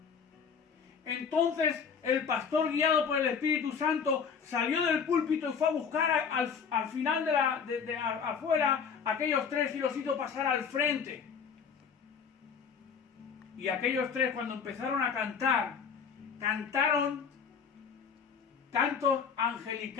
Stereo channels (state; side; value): quieter; right; 6.4 dB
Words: Entonces el pastor, guiado por el Espíritu Santo, salió del púlpito y fue a buscar al final de afuera a aquellos tres y los hizo pasar al frente. Y aquellos tres, cuando empezaron a cantar, cantaron cantos